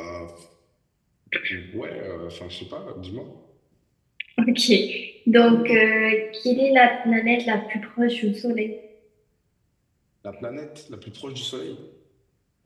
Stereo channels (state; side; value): identical; both; correlation 1.00